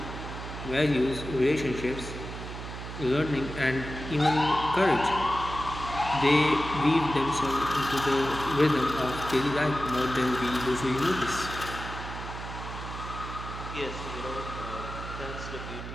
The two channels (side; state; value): right; noise; hum, 9 dB below the sound